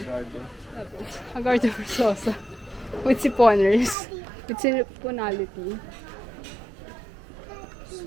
Tapos, Hagardo Versosa. With siponers. With siponality.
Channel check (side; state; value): left; drops out; at 4.0 s